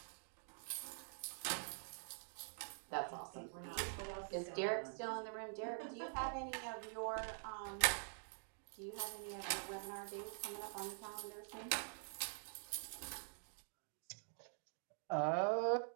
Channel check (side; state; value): left; silent; digital silence